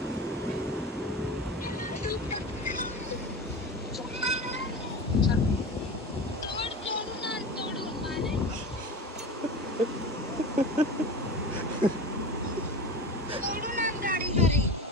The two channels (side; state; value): both; normal; correlation 0.30